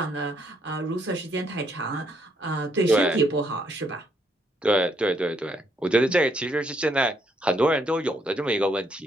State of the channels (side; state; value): both; normal; correlation 0.72